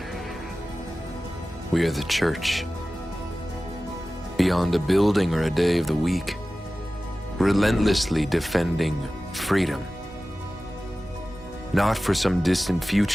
We are the church. Beyond a building or a day of the week, relentlessly defending freedom. Not for some distant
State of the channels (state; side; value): normal; both; correlation 0.96